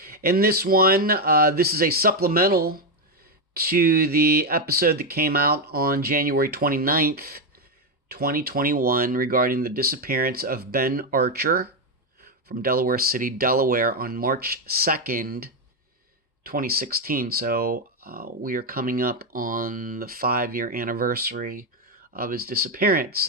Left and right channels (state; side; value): normal; both; correlation 0.06